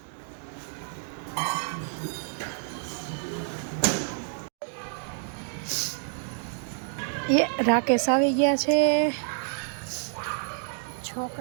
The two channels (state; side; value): silent; left; 59 dB below the other